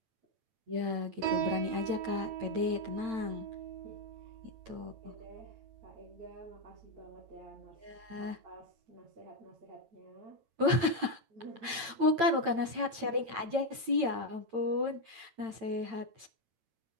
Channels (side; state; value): left; late; 9.0 ms